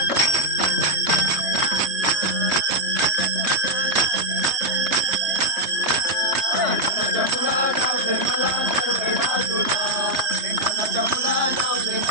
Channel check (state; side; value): late; left; 3.3 ms